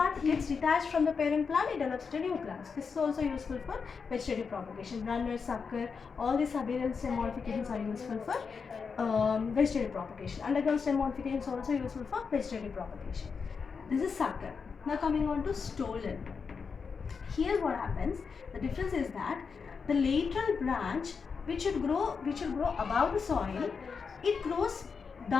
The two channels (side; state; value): right; quieter; 5.5 dB